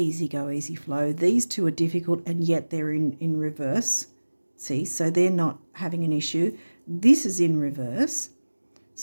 go, easy flow. These two are difficult, and yet they're in reverse. See, so they're not having an issue. This is in reverse.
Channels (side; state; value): both; inverted; correlation -1.00